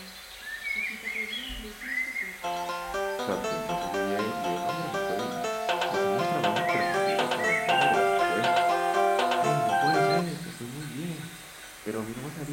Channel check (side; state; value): both; identical; correlation 1.00